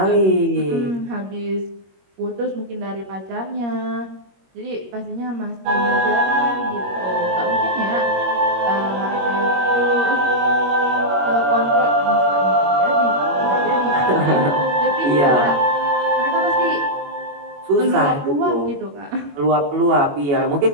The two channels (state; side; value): late; left; 21 ms